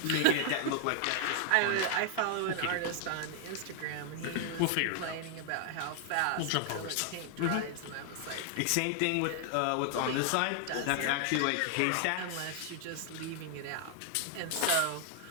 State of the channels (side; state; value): both; different; correlation 0.00